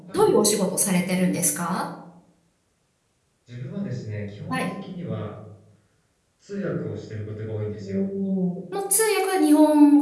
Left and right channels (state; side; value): identical; both; correlation 1.00